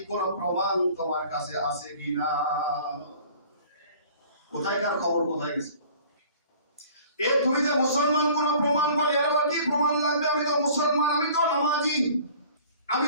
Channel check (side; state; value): both; inverted; correlation -0.49